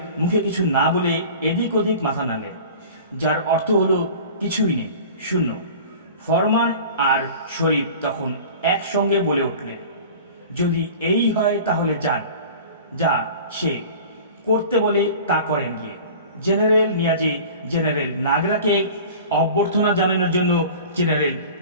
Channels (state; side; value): inverted; both; correlation -0.40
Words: মুখে কিছু না বলে এদিক ওদিক মাথা নাড়লেন, যার অর্থ হলো কিছুই নেই, শূন্য। ফরমান আর শরীফ তখন একসঙ্গে বলে উঠলেন, যদি এই হয় তাহলে যান, যা সে করতে বলে তা করেন গিয়ে। জেনারেল নিয়াজি জেনারেল নাগরাকে অভ্যর্থনা জানানোর জন্য জেনারেল